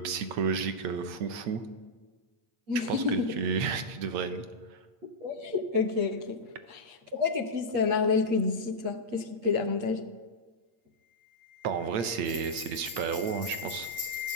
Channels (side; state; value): left; late; 8.6 ms